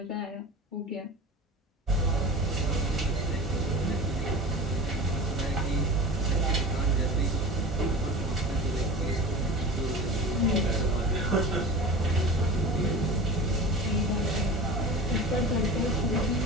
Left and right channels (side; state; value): both; normal; correlation 0.34